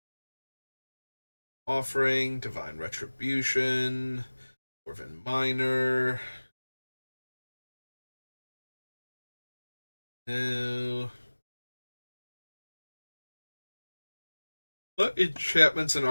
Offering, Divine Retribution, Dwarven Miner. No. What enchantments and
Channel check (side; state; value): both; inverted; correlation -1.00